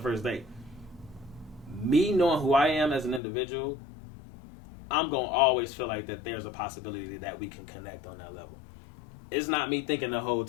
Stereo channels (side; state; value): right; drops out; at 3.2 s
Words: first date, me knowing who I am as an individual, I'm gonna always feel like that there's a possibility that we can connect on that level. It's not me thinking the whole